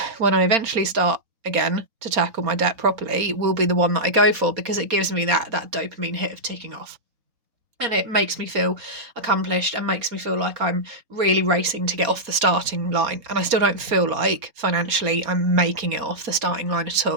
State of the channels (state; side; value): late; left; 4.3 ms